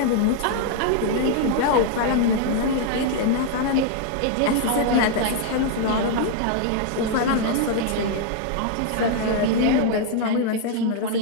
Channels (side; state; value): both; different; correlation 0.00